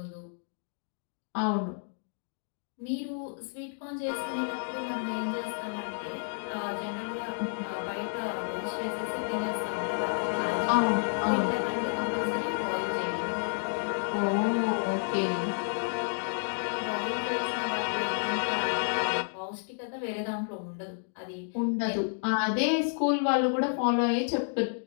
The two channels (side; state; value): right; silent; digital silence